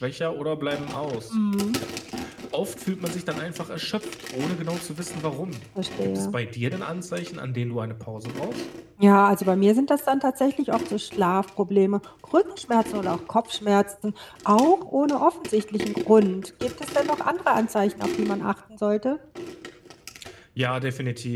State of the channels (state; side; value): identical; both; correlation 1.00